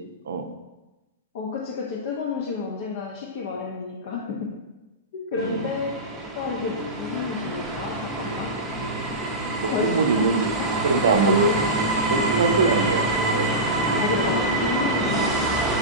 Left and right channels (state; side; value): normal; both; correlation -0.17